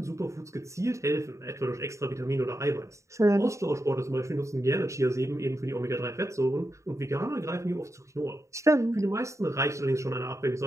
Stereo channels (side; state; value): left; late; 0.14 ms